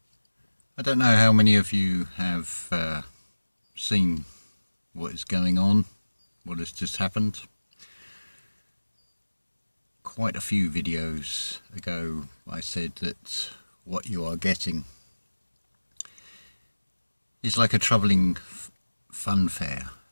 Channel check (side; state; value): both; inverted; correlation -1.00